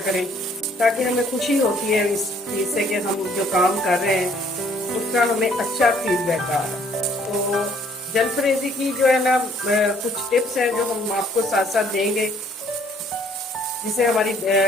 करें, ताकि हमें खुशी होती है इस चीज़ से कि हम जो काम कर रहे हैं उसका हमें अच्छा फीडबैक आ रहा है। तो जलफ्रेज़ी की जो है ना कुछ टिप्स हैं जो हम आपको साथ साथ देंगे, जिससे हमारी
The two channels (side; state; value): both; normal; correlation 0.62